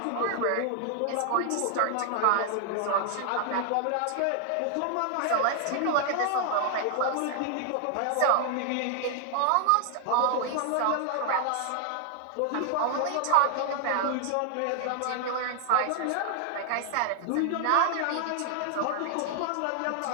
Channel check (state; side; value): different; both; correlation 0.00